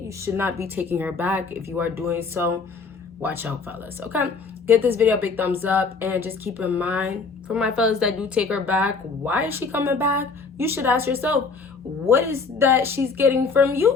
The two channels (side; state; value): right; quieter; 4.6 dB